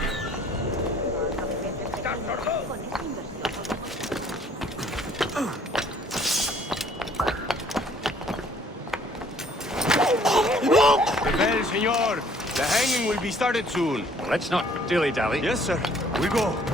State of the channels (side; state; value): both; normal; correlation 0.59